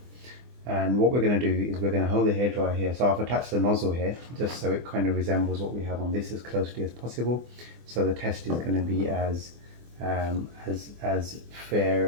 And what we're going to do is we're going to hold the hair dryer here. So I've attached the nozzle here just so it kind of resembles what we have on this as closely as possible. So the test is going to be as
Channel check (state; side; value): late; left; 24 ms